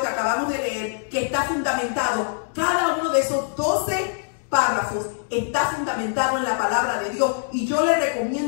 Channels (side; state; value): right; silent; digital silence